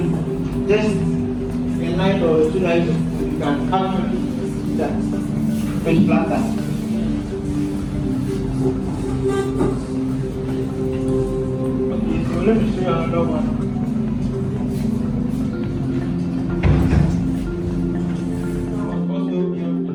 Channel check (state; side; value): identical; both; correlation 1.00